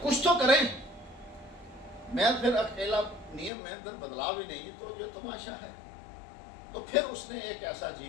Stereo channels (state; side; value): drops out; right; at 3.5 s